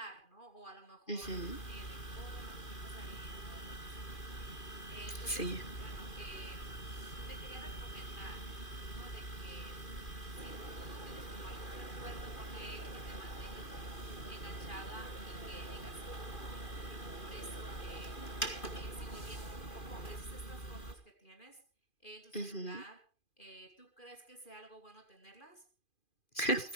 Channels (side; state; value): right; late; 2.4 ms